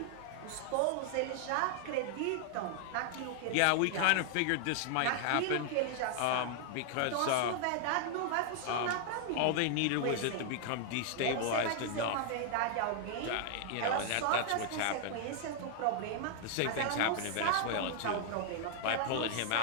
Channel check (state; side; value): different; both; correlation 0.00